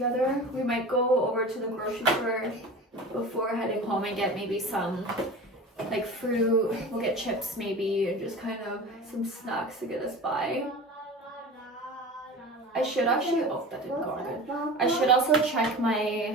We might go over to the grocery store before heading home and get maybe some like fruit. We'll get chips maybe, and just kind of some snacks to get us by. I should actually, oh, that didn't go on good. I should also check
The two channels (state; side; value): normal; both; correlation 0.34